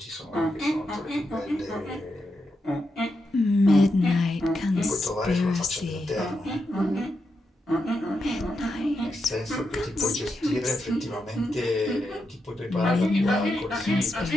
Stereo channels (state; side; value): normal; both; correlation 0.85